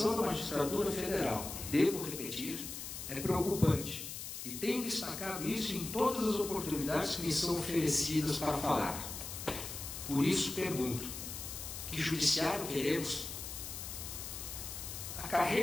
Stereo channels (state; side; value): noise; left; hiss, 8 dB below the sound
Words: da magistratura federal, devo repetir, é preocupante. E tenho destacado isso em todas as oportunidades que me são oferecidas para falar. Por isso pergunto, que judiciário queremos? A